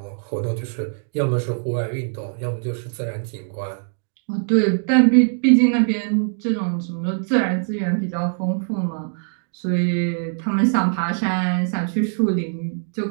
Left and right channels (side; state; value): left; silent; digital silence